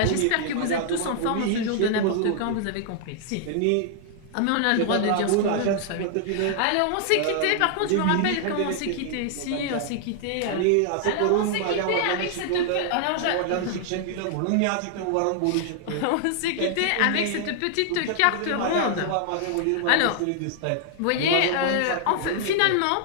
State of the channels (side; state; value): both; different; correlation 0.00